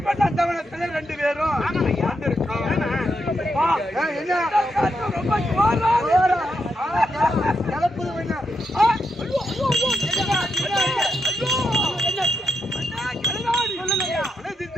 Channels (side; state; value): both; normal; correlation 0.82